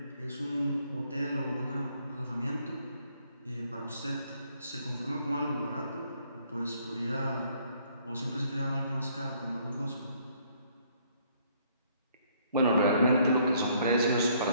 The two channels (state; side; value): inverted; both; correlation -0.65